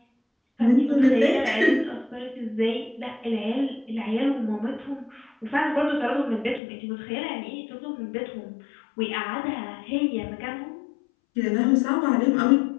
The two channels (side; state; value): right; drops out; at 6.6 s